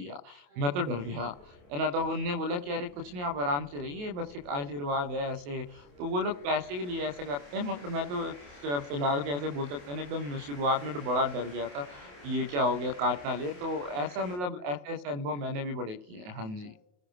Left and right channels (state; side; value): late; left; 28 ms